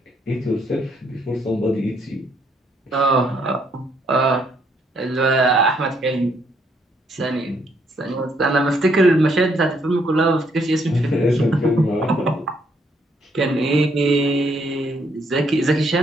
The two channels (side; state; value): both; normal; correlation 0.71